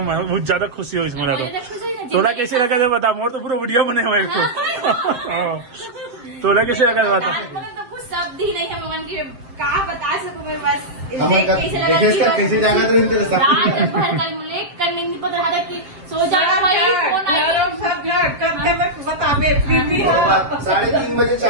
बहुत ज्यादा खुशी हुई इसमें। थोड़ा कैसे लगा था बता, मोर तो पूरा वीडियो बने हुए इसको। थोड़ा कैसे लगा था बता। तो कुछ शब्द ही नहीं है मगन की, कहा बता सकूं मैं बस। कैसे जाना तो इनके रात भर कल लेट करने नहीं पता था कि सो जाना भाई। फोन आया 3:30 बजे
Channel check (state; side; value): late; left; 7.6 ms